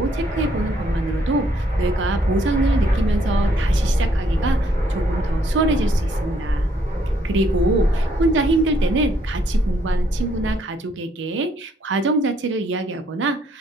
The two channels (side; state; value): both; normal; correlation 0.69